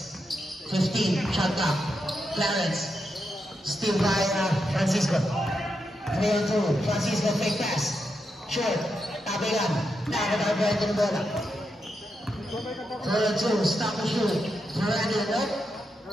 15, shot clock. Clarence. Still by Francisco. 3-2. Francisco fake pass. Short. Tabigan. Dapat ang Brandon bola. 3-2. Stop the shoot. Brandon, no?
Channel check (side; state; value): both; normal; correlation 0.85